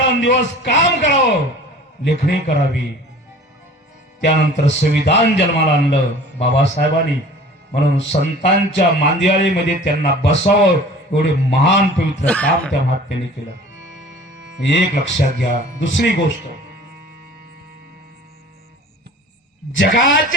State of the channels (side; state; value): both; normal; correlation 0.45